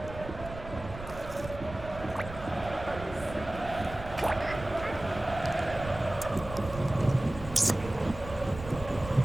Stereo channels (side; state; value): right; noise; rumble, 12 dB below the sound